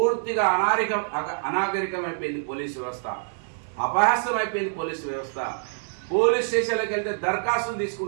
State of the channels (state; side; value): silent; left; digital silence